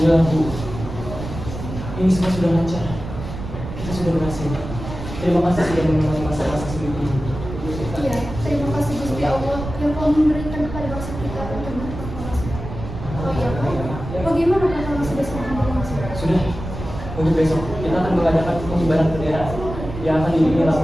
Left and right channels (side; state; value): right; noise; rumble, 9 dB below the sound